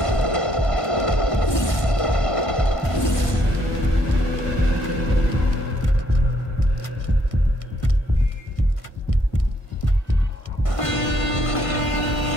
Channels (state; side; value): late; right; 1.6 ms